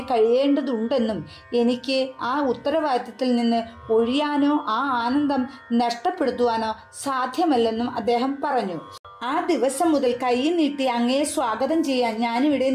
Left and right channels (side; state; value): both; identical; correlation 1.00